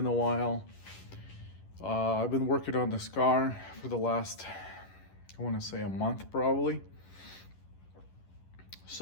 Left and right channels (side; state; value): right; late; 11 ms